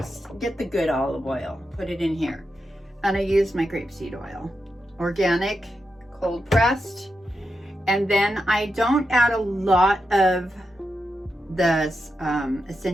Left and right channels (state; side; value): normal; both; correlation 0.87